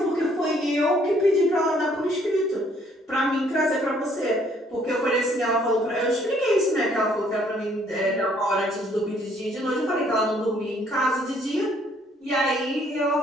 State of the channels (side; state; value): both; normal; correlation 0.64